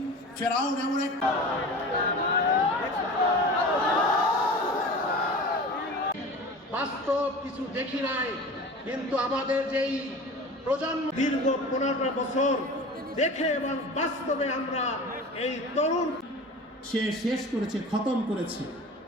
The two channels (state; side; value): normal; both; correlation 0.36